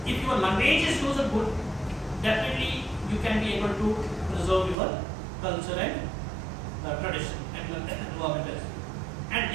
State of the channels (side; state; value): left; drops out; at 4.8 s